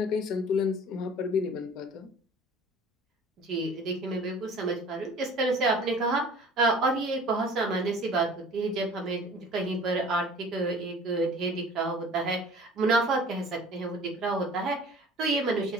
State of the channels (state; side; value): normal; both; correlation 0.46